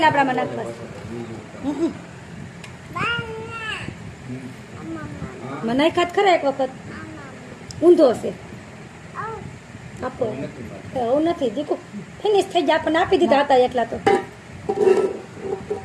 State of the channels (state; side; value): identical; both; correlation 1.00